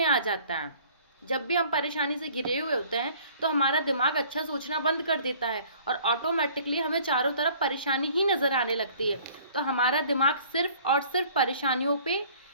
आ जाता है। जब भी हम परेशानी से घिरे हुए होते हैं तो हमारा दिमाग अच्छा सोचना बंद कर देता है और ऑटोमेटिकली हमें चारों तरफ परेशानी ही नज़र आने लगती है। तो हमारा दिमाग सिर्फ और सिर्फ परेशानियों पे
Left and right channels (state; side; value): inverted; both; correlation -0.53